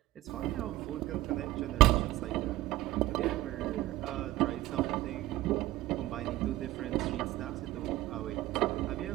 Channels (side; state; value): left; quieter; 16.6 dB